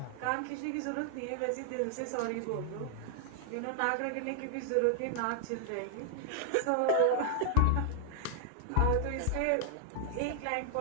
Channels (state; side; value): different; both; correlation 0.00